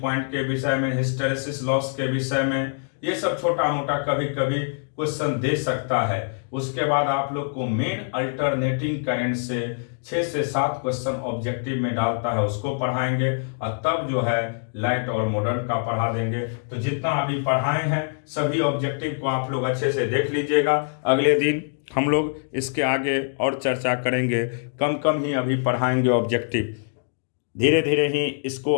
के विषय में, हिस्टेरेसिस लॉस के विषय में। ये सब छोटा मोटा कभी कभी क्वेश्चन दे सकता है। उसके बाद आप लोग को मेन अल्टरनेटिंग करंट से 6 से 7 क्वेश्चन ऑब्जेक्टिव में डालता है, उसको पढ़ाएंगे और तब जो है लाइट और मॉडर्न का पढ़ा देंगे। तो जितना अभी पढ़ाए हैं सभी ऑब्जेक्टिव को आप लोग अच्छे से देख लीजिएगा। अगले दिन हम लोग इसके आगे और चर्चा करेंगे। कम कम ही अभी पढ़ाएंगे ऑब्जेक्टिव, धीरे धीरे ही इसको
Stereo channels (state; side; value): silent; right; digital silence